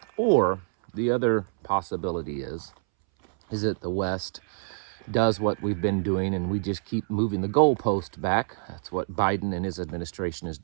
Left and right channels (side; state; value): left; silent; 60 dB below the other